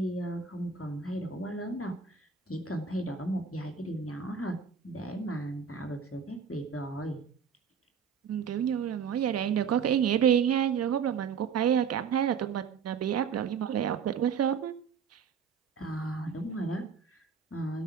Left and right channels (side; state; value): left; quieter; 6.8 dB